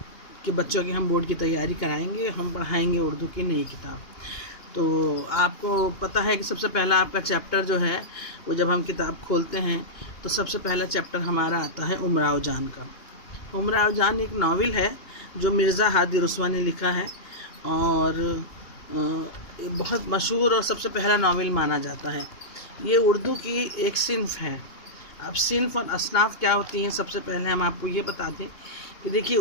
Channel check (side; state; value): right; late; 2.9 ms